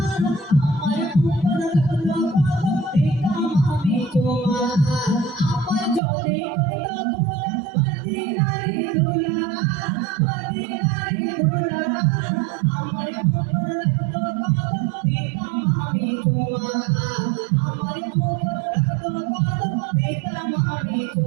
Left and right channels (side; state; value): left; drops out; at 6.0 s